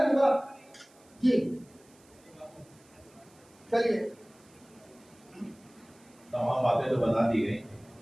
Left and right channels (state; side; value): noise; right; hiss, 29 dB below the sound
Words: बात जी। चलिए, तमाम बातें तो बता दी